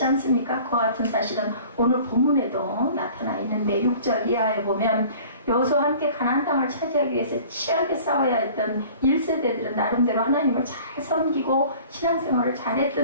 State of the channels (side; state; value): both; inverted; correlation -0.47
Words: 않습니까? 그와 같은 사실은 오늘 본문에도 나타나 있는데 6절 이하에 보면 여호수아와 함께 가나안 땅을 차지하기 위해서 치열하게 싸워야 했던 1세대들은 나름대로 하나님을 잘 섬기고 신앙생활을